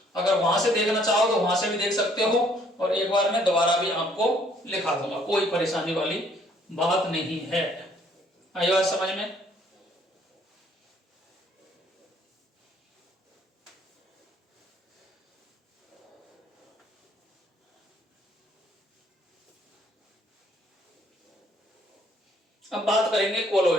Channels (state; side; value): normal; both; correlation 0.63